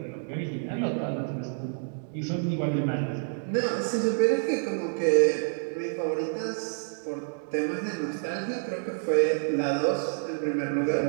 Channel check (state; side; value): silent; left; digital silence